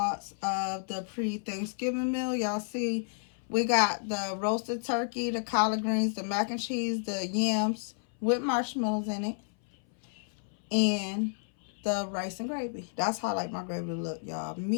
of the pre-Thanksgiving meal. Y'all see we got the roasted turkey, the collard greens, the mac and cheese, the yams with marshmallows in it, and the rice and gravy. That's how I like my gravy to look, y'all.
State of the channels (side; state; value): right; silent; 57 dB below the other